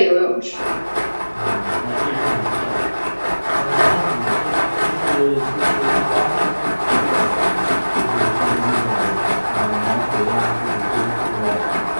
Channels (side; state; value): both; inverted; correlation -1.00